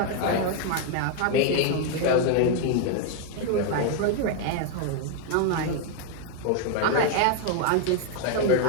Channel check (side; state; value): both; different; correlation 0.01